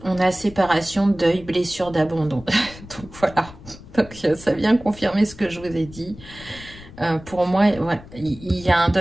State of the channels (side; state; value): left; noise; rumble, 18 dB below the sound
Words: on a séparation, deuil, blessure d'abandon. Donc voilà, donc, ça vient confirmer ce que je vous ai dit. Pour moi, ouais, il y a un